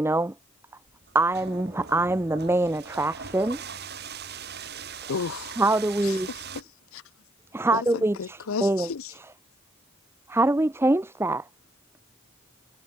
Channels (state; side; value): normal; both; correlation 0.74